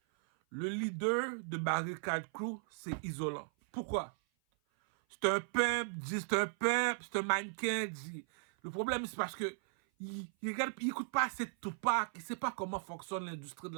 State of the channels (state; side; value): silent; left; 53 dB below the other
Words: Le leader de Barricade Crew, c'est Isolant. Pourquoi? C'est un pimp, c'est un mannequin, dit. Le problème, c'est parce que il écoute pas assez de Tupac, il sait pas comment fonctionne l'industrie de